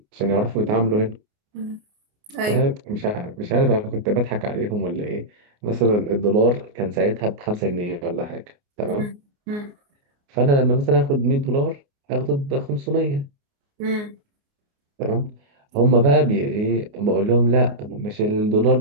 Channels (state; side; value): late; left; 29 ms